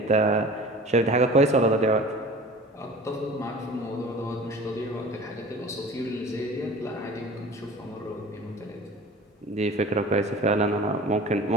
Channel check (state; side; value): normal; both; correlation 0.41